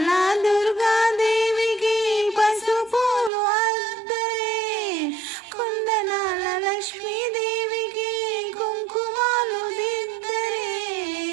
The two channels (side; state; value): left; drops out; at 3.3 s